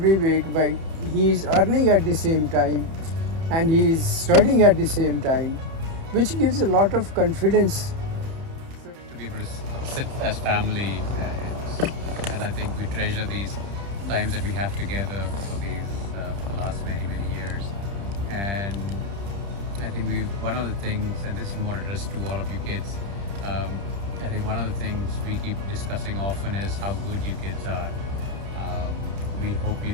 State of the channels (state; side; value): late; left; 30 ms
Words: way, by he is earning at the same time and he is studying at the same time, which gives a lot of confidence. To be able to sit as family, and I think we treasure these times that we have together for the last many years. And I think one of the things, and this is more addressed to all of you kids, I think one of the things we keep discussing often is how good you kids are. We hope you